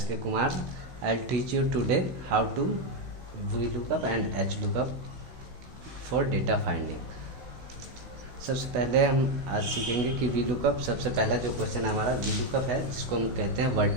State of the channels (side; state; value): left; late; 16 ms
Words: Kumar. I'll teach you today how to VLOOKUP and HLOOKUP for data finding. सबसे पहले हम आज सीखेंगे कि VLOOKUP। सबसे पहला जो क्वेश्चन हमारा VLOOKUP है, जिसको हम कहते हैं